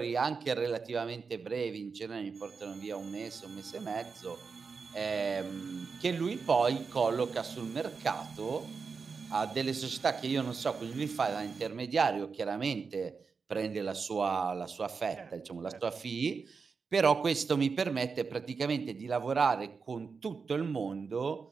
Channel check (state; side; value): quieter; left; 5.2 dB